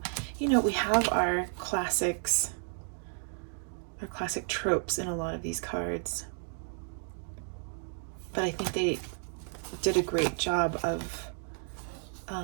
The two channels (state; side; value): silent; left; 56 dB below the other